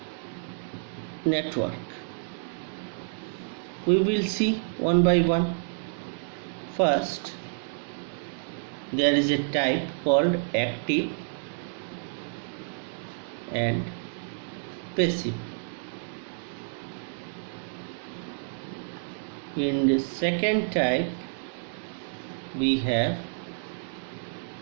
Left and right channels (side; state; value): left; silent; digital silence